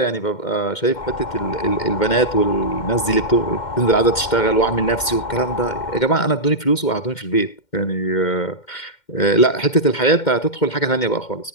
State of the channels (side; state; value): right; late; 2.1 ms